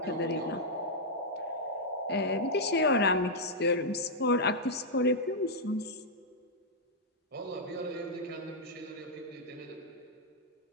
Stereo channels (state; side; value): normal; both; correlation -0.06